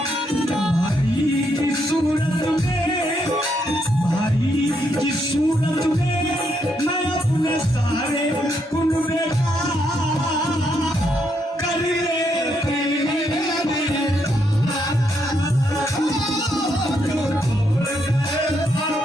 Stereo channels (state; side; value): normal; both; correlation 0.77